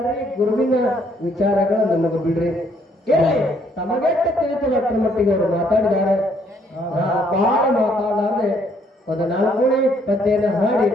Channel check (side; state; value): both; normal; correlation 0.67